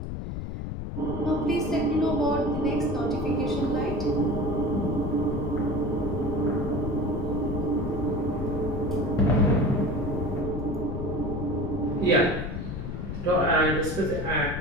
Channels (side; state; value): left; noise; rumble, 5 dB below the sound